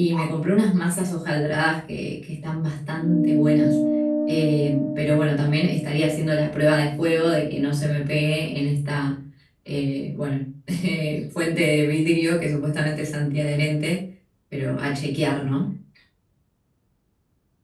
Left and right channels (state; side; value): identical; both; correlation 1.00